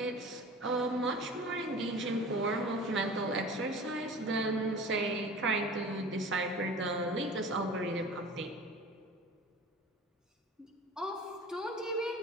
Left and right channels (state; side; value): normal; both; correlation 0.39